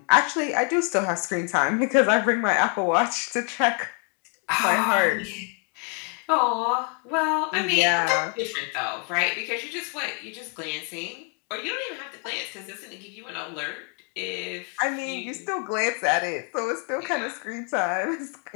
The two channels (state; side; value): quieter; right; 37.8 dB